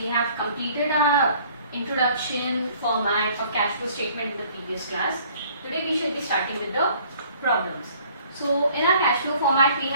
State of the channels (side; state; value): both; inverted; correlation -0.56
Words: have completed our introduction format of cash flow statement in the previous class. Today we shall be starting with the problems. So in our cash flow format we